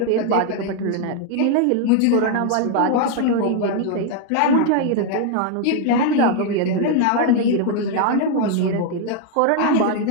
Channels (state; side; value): different; both; correlation 0.00